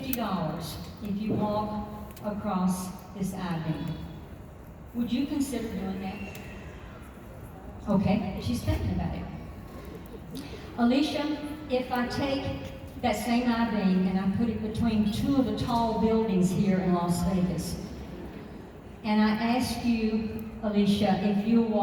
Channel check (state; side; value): identical; both; correlation 1.00